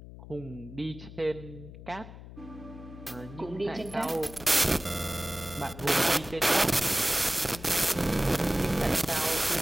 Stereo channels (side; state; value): left; noise; hum, 15 dB below the sound